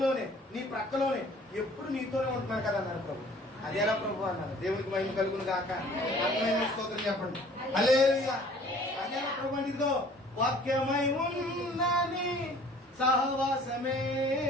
నీ ప్రక్కలోనే, ఎప్పుడు నీతోనే ఉంటున్నాను కదా అన్నారు ప్రభు. అదేలా ప్రభు అన్నారు. దేవునికి మహిమ కలుగును గాక. స్తోత్రం చెప్పండి, హల్లెలూయా. అదేలా ప్రభు అంటే ఇదిగో వాక్యమై ఉన్నని సహవాసమే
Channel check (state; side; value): normal; both; correlation 0.52